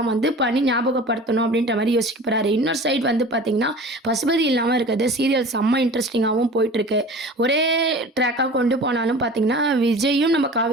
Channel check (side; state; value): both; normal; correlation 0.40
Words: வந்து பண்ணி ஞாபகப்படுத்தணும் அப்படின்ற மாதிரி யோசிக்க போறாரு. இன்னொரு சைடு வந்து பார்த்தீங்கன்னா பசுபதி இல்லாமல் இருக்கிறது சீரியல் செம்ம இன்ட்ரெஸ்டிங்காகவும் போயிட்டுருக்கு. ஒரே ட்ராக்காக கொண்டு போனாலும் பார்த்தீங்கன்னா விஜயும் நம்ம